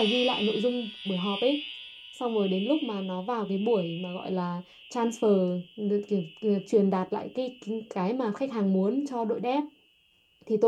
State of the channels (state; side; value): identical; both; correlation 1.00